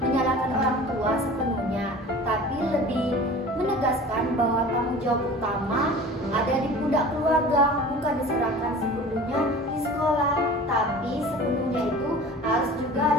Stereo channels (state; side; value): normal; both; correlation 0.41